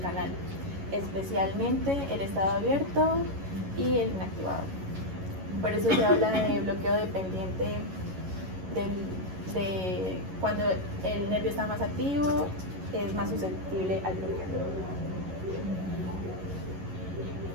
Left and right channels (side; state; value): left; late; 11 ms